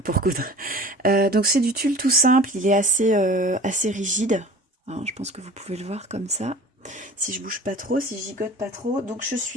coudre. Donc, c'est du tulle tout simple. Il est assez rigide. Alors, je pense que vous pouvez le voir comme ça. Si je bouge pas trop, si je gigote pas trop. Donc, je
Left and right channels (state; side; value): normal; both; correlation 0.42